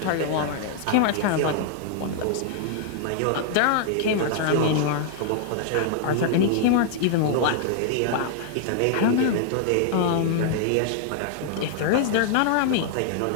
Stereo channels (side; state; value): both; different; correlation -0.01